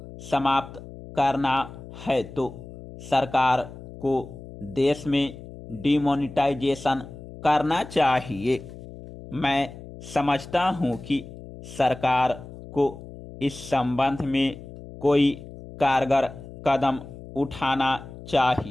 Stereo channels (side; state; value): left; noise; hum, 15 dB below the sound